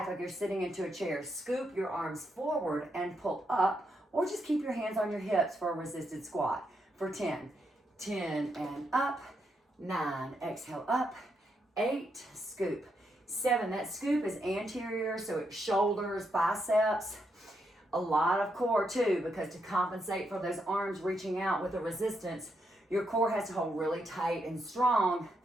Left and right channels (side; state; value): both; normal; correlation 0.80